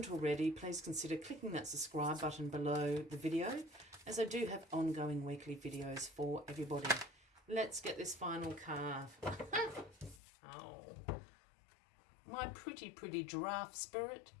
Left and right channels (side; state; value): right; drops out; at 10.2 s